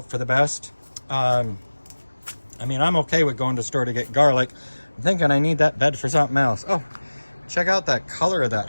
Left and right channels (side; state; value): both; inverted; correlation -1.00